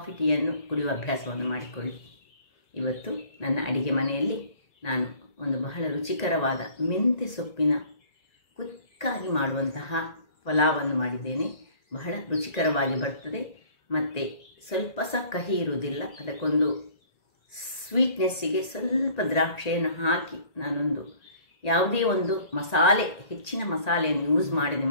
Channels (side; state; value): right; late; 1.8 ms